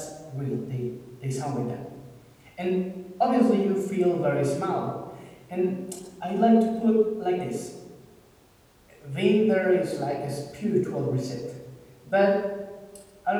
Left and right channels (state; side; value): identical; both; correlation 1.00